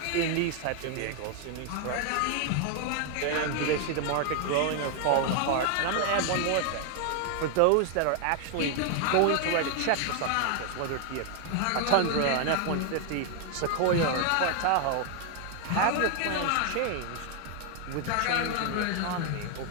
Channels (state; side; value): different; both; correlation 0.00